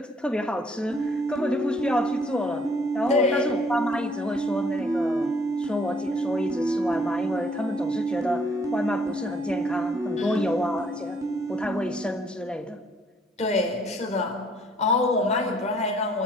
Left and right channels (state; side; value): normal; both; correlation 0.63